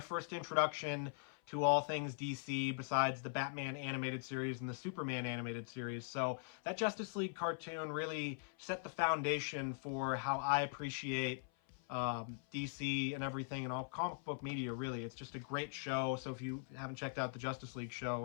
introduction to all things DC besides the Batman animated series and the Superman animated series. So that Justice League cartoon really set the foundation for how I appreciate DC and everything and all comic book media, really. It's just a great show. So if you haven't checked out the Justice League show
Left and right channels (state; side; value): silent; right; 50 dB below the other